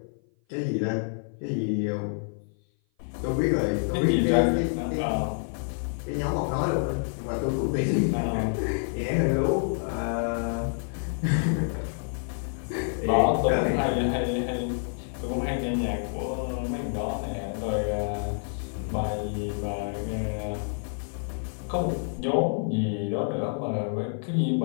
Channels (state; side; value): silent; right; 56 dB below the other